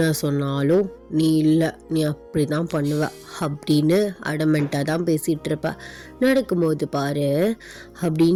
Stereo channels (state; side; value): identical; both; correlation 1.00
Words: சொன்னாலும் நீ இல்லை, நீ அப்படி தான் பண்ணுவ அப்படின்னு அடமெண்ட்டாக தான் பேசிகிட்டு இருப்ப. நடக்கும்போது பாரு